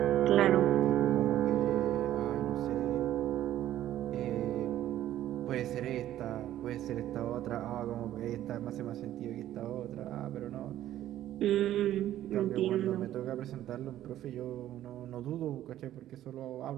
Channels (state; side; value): quieter; left; 12.8 dB